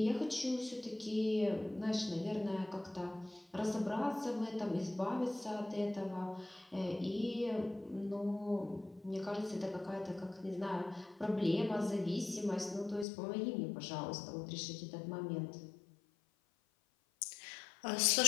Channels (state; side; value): drops out; right; at 13.1 s